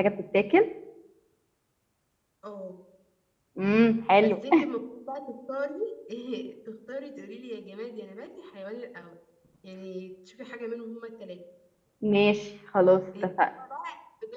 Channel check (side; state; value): both; identical; correlation 1.00